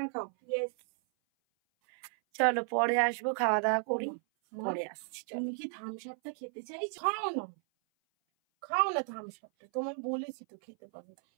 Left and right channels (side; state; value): left; silent; 55 dB below the other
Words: খাও। চলো পরে আসবো, খাওয়া দাওয়া করি, পরে আসছি। তুমি কি থামস আপটা খেতে চাইছো? খাও না, খাও না থামস আপটা, তোমার বলেছি তো খেতে পাবে।